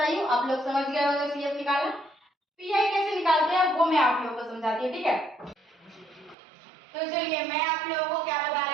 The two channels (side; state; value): left; drops out; at 6.4 s